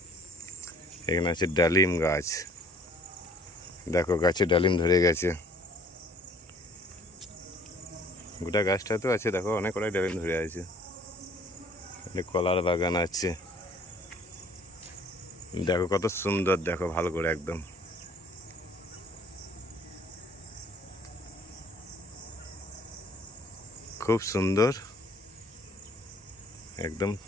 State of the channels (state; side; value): normal; both; correlation 0.56